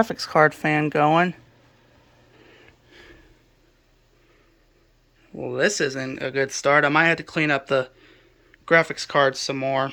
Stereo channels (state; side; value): identical; both; correlation 1.00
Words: card fan going. Well, this isn't a good start. I might have to clean up the graphics card some more.